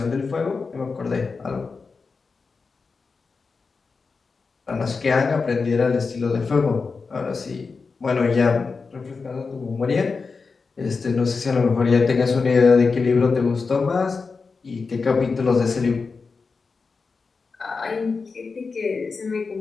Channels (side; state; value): right; quieter; 4.6 dB